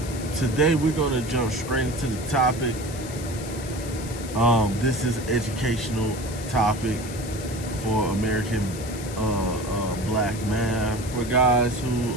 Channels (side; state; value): left; noise; hiss, 14 dB below the sound